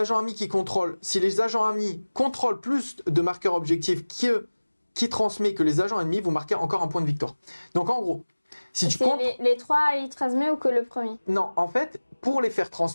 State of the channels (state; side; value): inverted; both; correlation -1.00